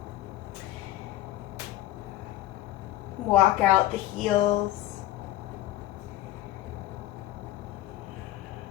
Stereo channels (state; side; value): quieter; right; 14.7 dB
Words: Walk out the heels.